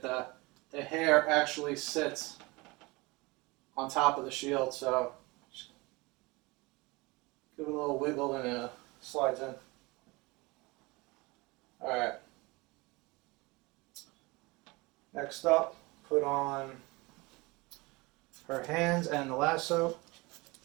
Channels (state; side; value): quieter; left; 24.3 dB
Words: The hair actually sits on top of the shield, so just give it a little wiggle and it slides in. Alright. Next up, put on her hands and the lasso.